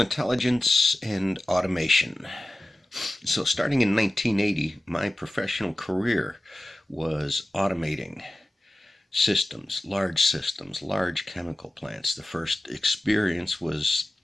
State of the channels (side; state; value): both; normal; correlation 0.95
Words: intelligence and automation. So, starting in 1980, my professional career was automating systems, large chemical plants. The first experience was